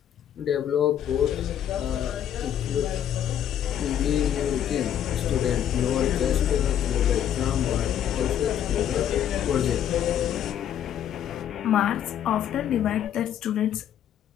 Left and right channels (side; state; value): right; quieter; 10.1 dB